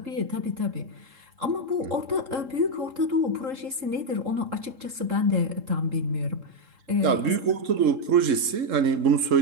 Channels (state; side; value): late; left; 3.7 ms